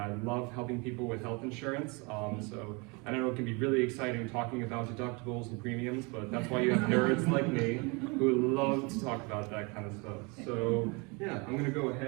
love helping people with health insurance. I know it can be really exciting talking about deductibles and premiums, but that's why you have nerds like me who love to talk about that kind of stuff. So yeah, I'm gonna go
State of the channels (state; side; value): quieter; left; 29.4 dB